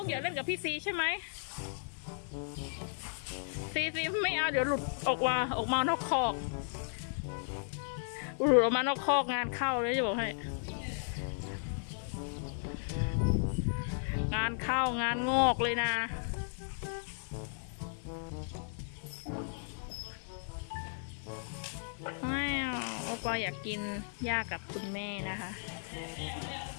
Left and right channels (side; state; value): right; silent; digital silence